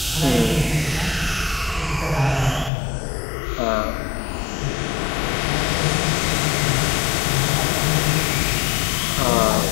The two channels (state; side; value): drops out; right; at 2.7 s